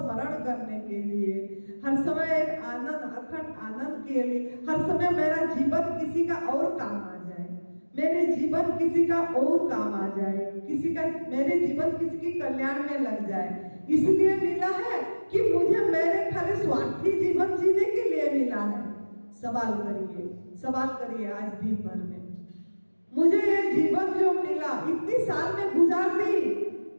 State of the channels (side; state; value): both; inverted; correlation -1.00